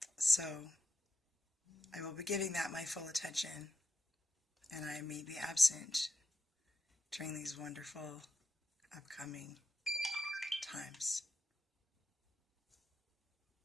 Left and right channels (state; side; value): normal; both; correlation 0.87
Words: So I will be giving that my full attention, and I may be absent during these wonderful upcoming times.